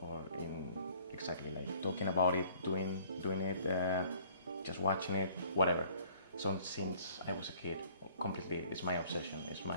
in exactly like talking about it, doing it, just watching it, whatever. So since I was a kid, completely, it's my obsession, it's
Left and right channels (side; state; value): both; inverted; correlation -0.56